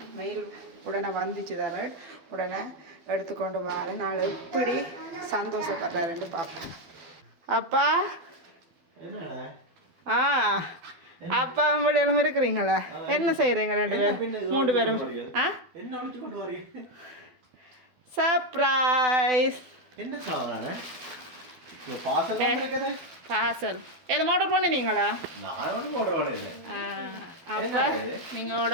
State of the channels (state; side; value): late; left; 12 ms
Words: மெயில் உடனே வந்துச்சு தர உடனே எடுத்துக்கொண்டு வர நாள் எப்படி சந்தோஷப்படுறாருன்னு பார்ப்போம். அப்பா அப்பா வெளியெல்லாம் இருக்கிறீங்களா? என்ன செய்கிறீங்க ரெண்டு பேரும் 3 பேரும்? சர்ப்ரைஸ். என்ன சாப்பிட்றானே பார்சல் எதுவும் ஆர்டர் பண்ணினீங்களா? நான் ஒன்றும் ஆர்டர் பண்ணல. அப்போ நீங்கள்